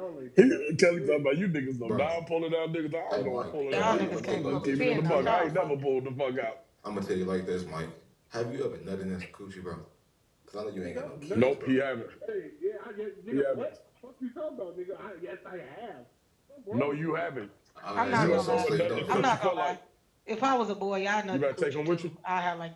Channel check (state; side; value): identical; both; correlation 1.00